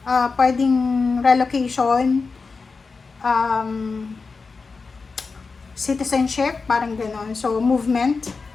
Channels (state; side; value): quieter; right; 4.5 dB